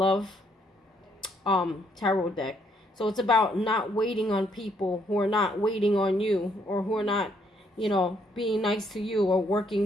tarot deck. So it's about not waiting on people who are not waiting on you, or who are not, being nice to you, or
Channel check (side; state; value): both; normal; correlation 0.71